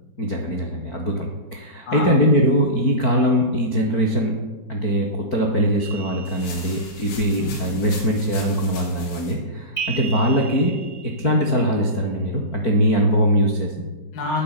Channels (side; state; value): right; late; 4.5 ms